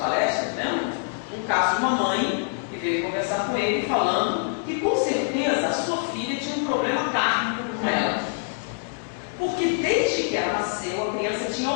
né? Um caso de uma mãe que veio conversar com ele falando que com certeza a sua filha tinha um problema kármico com ela. Porque desde que ela nasceu, a criança tinha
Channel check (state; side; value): silent; right; digital silence